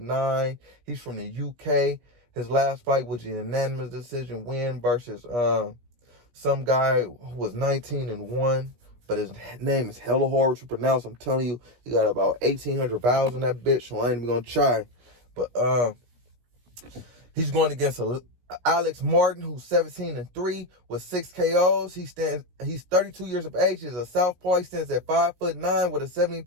He's from the UK. His last fight was a unanimous decision win versus some guy who was 19-1. But his name is hella hard to pronounce. I'm telling you, he got about 1,800 vowels in that bitch, so I ain't even gonna try. But he's going against Alex Martin, who's 17-3 with 6 KOs. He's 32 years of age. He's a southpaw. He stands at 5'9" with a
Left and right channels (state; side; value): late; left; 17 ms